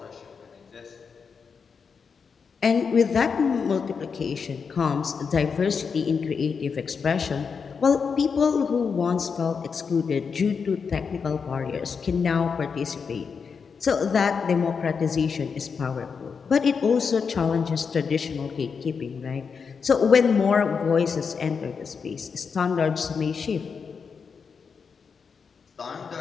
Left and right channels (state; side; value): quieter; right; 5.8 dB